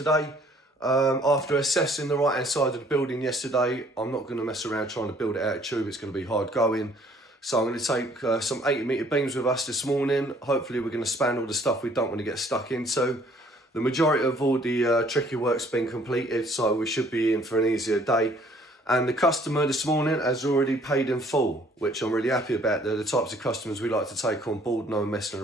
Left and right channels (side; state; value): both; normal; correlation 0.59